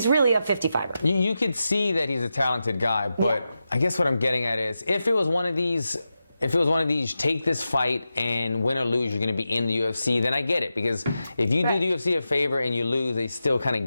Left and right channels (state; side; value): inverted; both; correlation -0.90